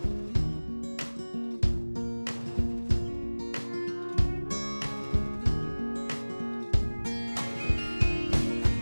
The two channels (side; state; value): both; inverted; correlation -1.00